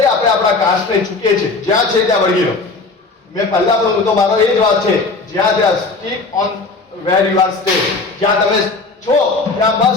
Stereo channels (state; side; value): quieter; right; 3.8 dB